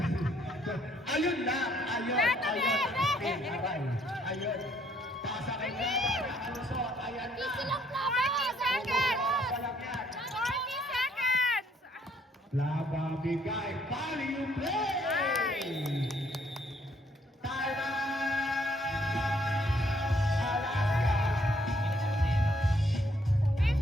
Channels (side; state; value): both; normal; correlation 0.67